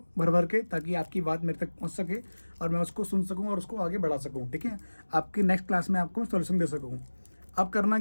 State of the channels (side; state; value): both; inverted; correlation -1.00